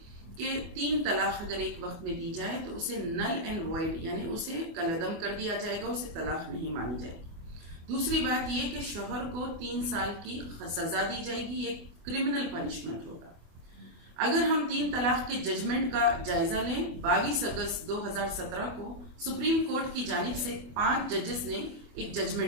कि 3 तलाक अगर एक वक्त में दी जाए तो उसे नल एंड वॉइड यानी उसे कलअदम कर दिया जाएगा, उसे तलाक नहीं मानी जाएगी। दूसरी बात ये कि शौहर को 3 साल की सजा दी जाएगी, ये क्रिमिनल पनिशमेंट होगा। अगर हम 3 तलाक के जजमेंट का जायजा लें, 22 अगस्त 2017 को सुप्रीम कोर्ट की जानिब से 5 जजेस ने एक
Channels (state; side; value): late; left; 24 ms